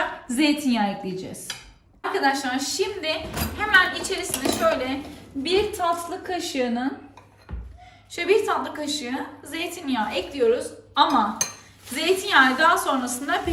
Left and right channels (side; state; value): both; identical; correlation 1.00